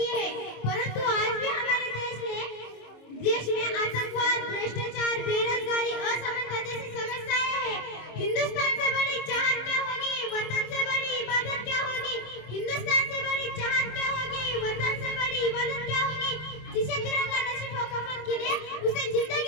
है, परंतु आज भी हमारे देश में आतंकवाद, भ्रष्टाचार, बेरोजगारी, असमानता जैसी समस्याएं हैं। हिंदुस्तान से बड़ी चाहत क्या होगी, वतन से बड़ी इबादत क्या होगी। हिंदुस्तान से बड़ी चाहत क्या होगी, वतन से बड़ी इबादत क्या होगी। जिसे तिरंगा नसीब हो कफन के लिए, उसे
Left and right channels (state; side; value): late; right; 26 ms